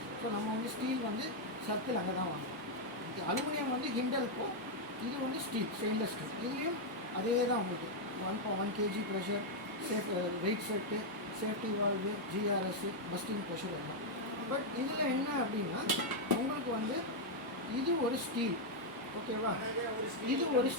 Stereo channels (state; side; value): normal; both; correlation -0.01